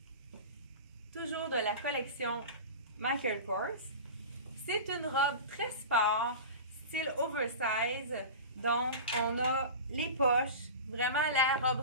Toujours de la collection Michael Kors. C'est une robe très sport, style oversize. Donc, on a les poches, vraiment la robe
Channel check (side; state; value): both; inverted; correlation -0.30